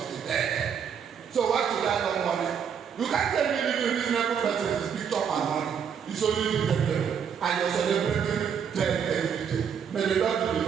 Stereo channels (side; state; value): left; quieter; 7.5 dB